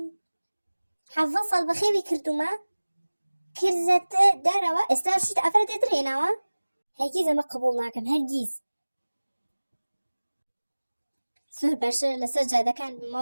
حەڤە ساڵ بەخێوی کردومە کرزەتە دارەوە ئێستا شیت ئافرەتێتر هێناوە هەرگیز ئەمە قبوڵ ناکەم هەرگیز زۆر باشتر لەسەر جادەکان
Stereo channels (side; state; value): both; inverted; correlation -1.00